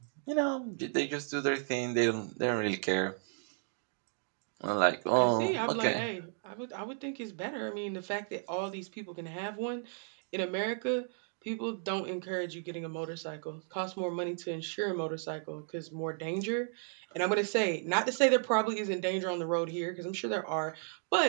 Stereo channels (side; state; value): left; silent; 55 dB below the other